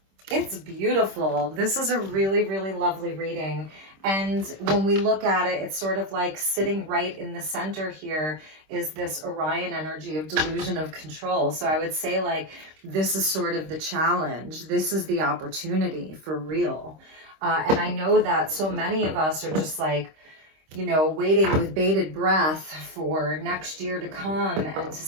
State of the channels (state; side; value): late; left; 26 ms